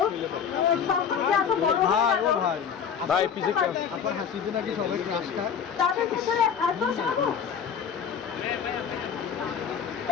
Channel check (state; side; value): quieter; right; 7.4 dB